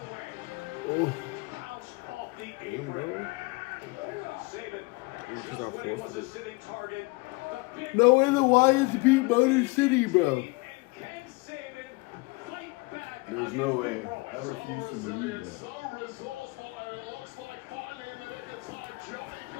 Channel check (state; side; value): quieter; right; 25.6 dB